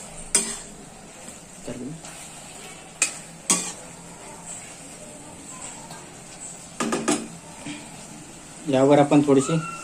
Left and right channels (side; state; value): both; identical; correlation 1.00